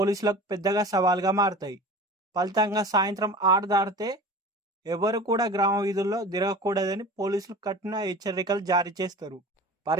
పెద్దగా సవాల్గా మారతాయి. ఫలితంగా సాయంత్రం 6 దాటితే ఎవరు కూడా గ్రామ వీధుల్లో తిరగకూడదని పోలీసులు కఠిన హెచ్చరికలు జారీ చేస్తారు.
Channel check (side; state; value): both; normal; correlation 0.37